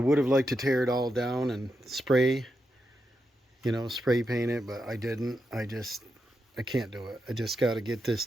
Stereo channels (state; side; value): normal; both; correlation 0.86